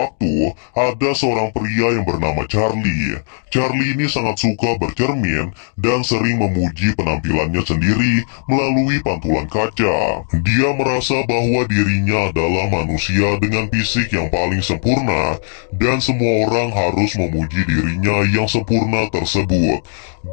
ada seorang pria yang bernama Charlie. Charlie ini sangat suka bercermin dan sering memuji penampilannya sendiri melalui pantulan kaca. Dia merasa bahwa dirinya adalah manusia dengan fisik yang paling sempurna, dan semua orang harus memuji dirinya yang sempurna tersebut.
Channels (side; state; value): right; silent; digital silence